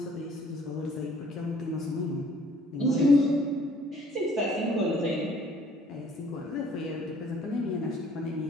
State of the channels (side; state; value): both; normal; correlation 0.58